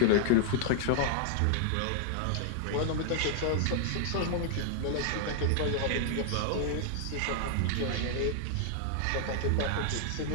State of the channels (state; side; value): different; both; correlation 0.00